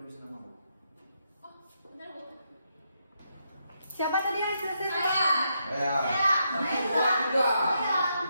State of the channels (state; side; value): inverted; both; correlation -0.80